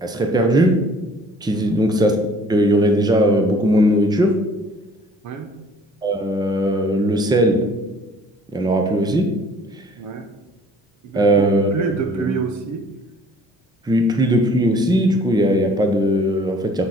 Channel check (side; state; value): both; normal; correlation 0.54